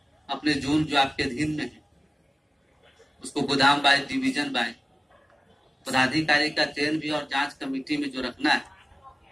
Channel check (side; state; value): both; normal; correlation 0.96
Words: अपने जोन जो आपके अधीन में है उसको गोदाम बाय डिवीजन बाय पदाधिकारी का चयन भी और जांच कमेटी में जो रखना है